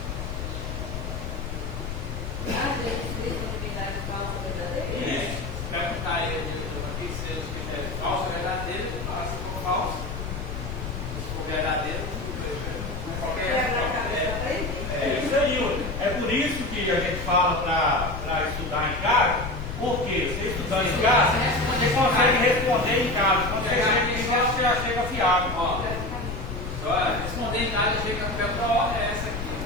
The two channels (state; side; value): noise; left; rumble, 6 dB below the sound